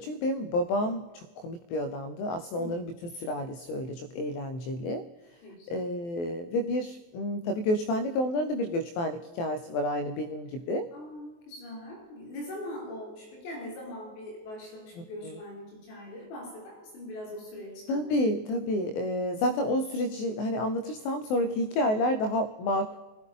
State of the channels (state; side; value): late; right; 23 ms